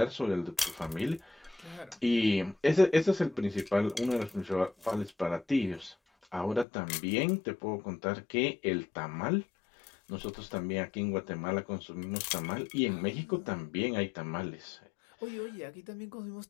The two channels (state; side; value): drops out; right; at 6.7 s